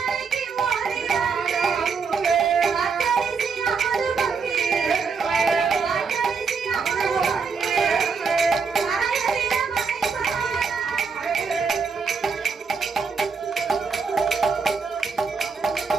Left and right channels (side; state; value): left; quieter; 5.3 dB